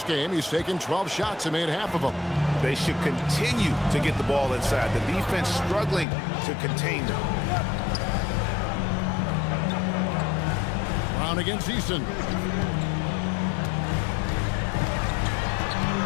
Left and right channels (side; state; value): right; drops out; at 6.1 s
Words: game. He's taken 12 shots and made half of them. They should continue to get the ball inside. The defense struggling to contain them. Brown against Eason.